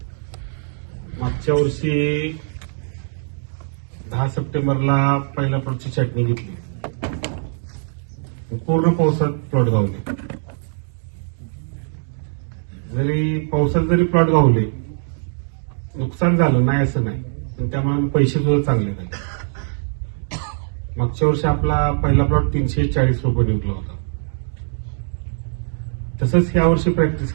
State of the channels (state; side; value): silent; left; digital silence